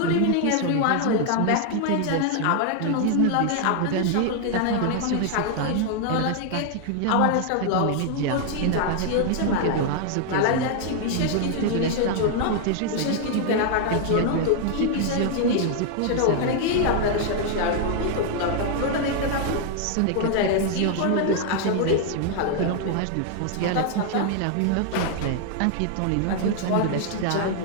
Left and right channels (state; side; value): different; both; correlation 0.00